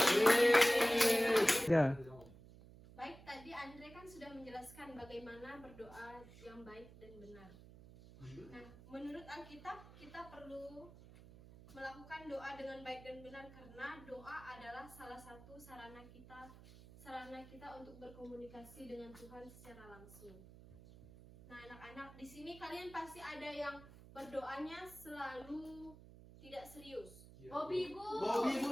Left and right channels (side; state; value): right; noise; hum, 19 dB below the sound